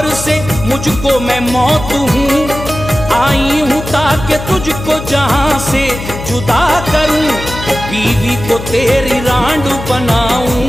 से मुझको मैं मौत हूँ, आई हूँ ताकि तुझको जहां से जुदा करूं, बीवी को तेरी रांड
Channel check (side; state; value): left; noise; hum, 9 dB below the sound